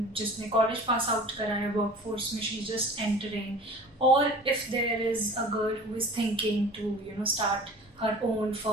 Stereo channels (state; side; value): normal; both; correlation 0.42